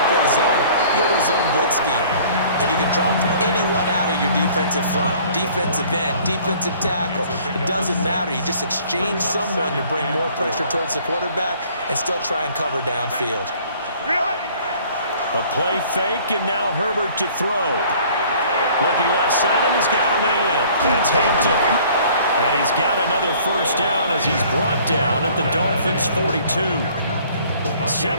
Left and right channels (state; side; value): inverted; both; correlation -0.54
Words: play zone, you go to a zone blitz scheme. And you can drop anyone out of your defensive front. Defensive end, defensive tackle. It doesn't matter. You just exchange someone to bring more pressure towards the quarterback and still try and cover downfield. A play fake, and now Herbert to throw. Looking left side, and he's got a man. That's Hampton. And he's got another 1st down as he's brought down at the Dolphins' 42.